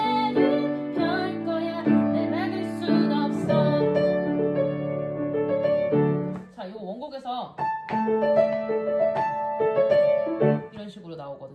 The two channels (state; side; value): identical; both; correlation 1.00